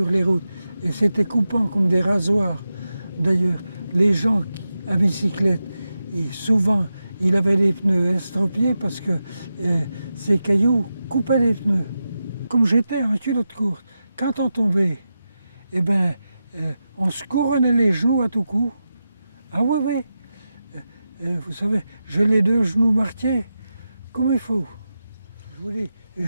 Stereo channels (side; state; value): both; inverted; correlation -0.90